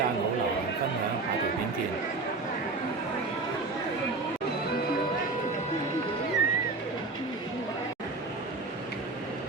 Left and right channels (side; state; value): left; quieter; 3.6 dB